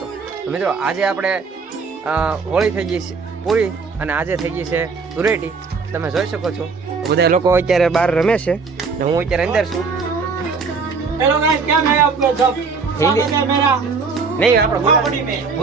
તો મિત્રો આજે આપણે હોળી થઈ ગઈ છે પૂરી અને આજે થઈ ગઈ છે ધૂળેટી। તમે જોઈ શકો છો બધા લોકો અત્યારે બહાર રમે છે ને હું અત્યારે અંદર છું। हेलो गाइस, क्या मैं आपको सब स्वागत है मेरा નહીં આપણે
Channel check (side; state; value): left; quieter; 4.8 dB